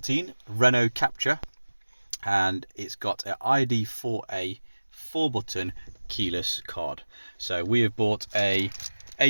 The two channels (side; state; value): both; inverted; correlation -1.00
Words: Renault Captur and it's got an ID4A 4-button keyless card. So we have bought a